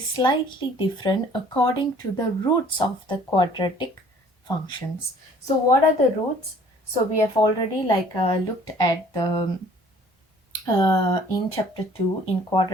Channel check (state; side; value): normal; both; correlation 0.55